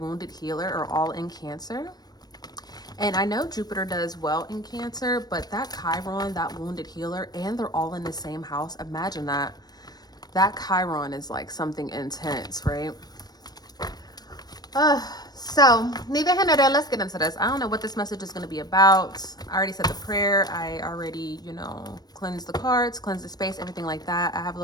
healer, are all in Cancer. And I know Jupiter does well in Cancer, but that Chiron, that wounded healer, and they're all in the same house. Imagine that. That Chiron is like something intense, right? So neither here nor there, let's get into this. I don't know what this message is going to be about. I already said the prayer. I already, cleansed the cards, cleansed the space, everything like that. I have a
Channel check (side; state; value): right; late; 0.19 ms